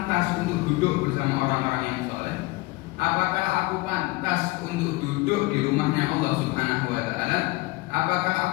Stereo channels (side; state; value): right; quieter; 21.9 dB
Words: untuk duduk bersama orang-orang yang soleh? Apakah aku pantas untuk duduk di rumahnya Allah Subhanahu wa Ta'ala? Apakah